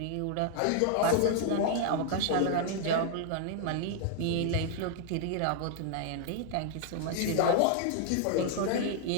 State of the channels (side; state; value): both; different; correlation 0.00